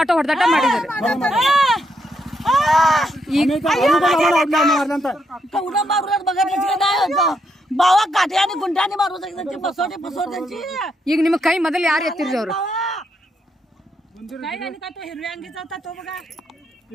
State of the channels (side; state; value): both; normal; correlation 0.78